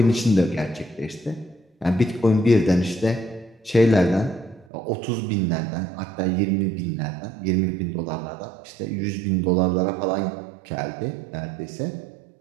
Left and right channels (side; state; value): left; drops out; at 4.7 s